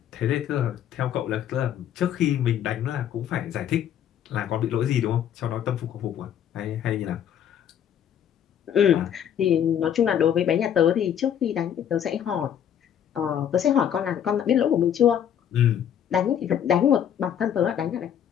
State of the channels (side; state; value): right; quieter; 9.5 dB